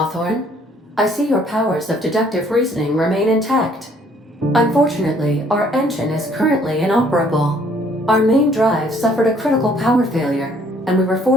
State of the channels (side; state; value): both; normal; correlation 0.62